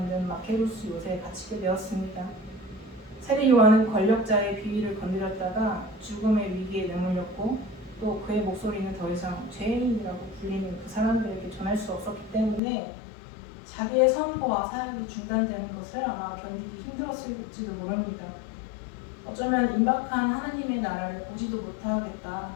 마케루스 요새에 갇히게 되었습니다. 세례 요한은 권력자의 비위를 건드렸다가 죽음의 위기에 내몰렸고 또 그의 목소리는 더 이상 죄인이라고 불리는 그 사람들에게 전할 수 없었기 때문에 자기의 선포와 사역이 중단되는 것을 아마 견디기 힘들었을지도 모릅니다. 어쩌면 임박한 하나님의 나라를 보지도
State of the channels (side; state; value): right; drops out; at 12.6 s